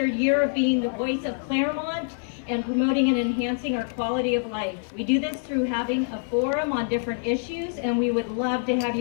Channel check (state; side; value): silent; right; digital silence